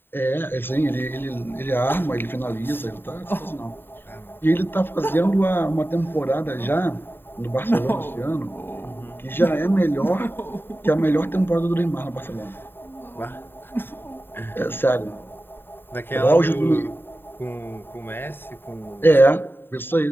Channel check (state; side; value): late; right; 0.10 ms